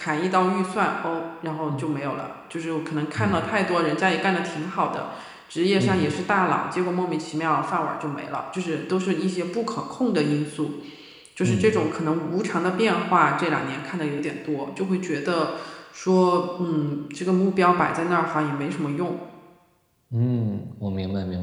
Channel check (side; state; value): both; identical; correlation 1.00